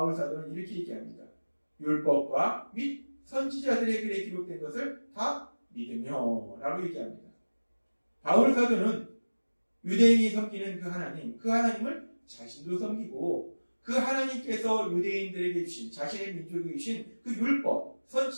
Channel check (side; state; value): both; inverted; correlation -1.00